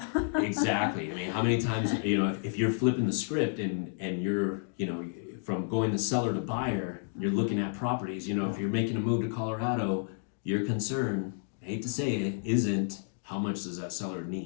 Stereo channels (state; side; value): silent; right; digital silence